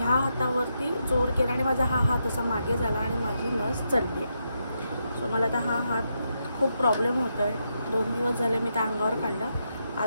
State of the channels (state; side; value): inverted; both; correlation -0.83